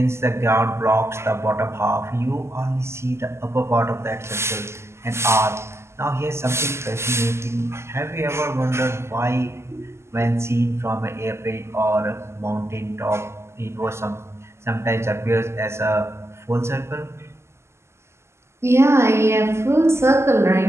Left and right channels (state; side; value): late; left; 0.13 ms